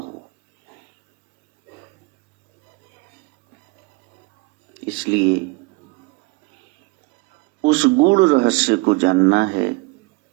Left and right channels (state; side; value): quieter; left; 25.0 dB